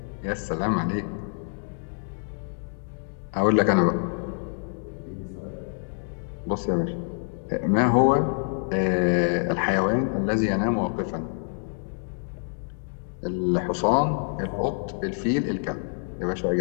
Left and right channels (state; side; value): silent; right; digital silence